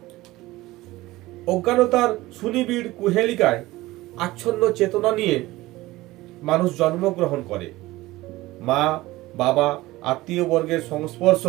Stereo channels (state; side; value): quieter; left; 18.6 dB